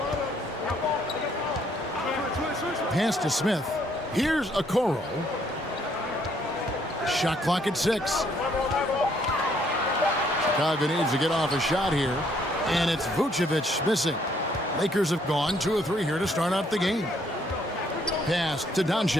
Pass to Smith. Here's Okoro. Shot clock at 6. Chicago needs to get off a shot here. And it's Vucevic missing. Lakers have gone 2 of 3 here to start out the game. Pass to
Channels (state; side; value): normal; both; correlation 0.67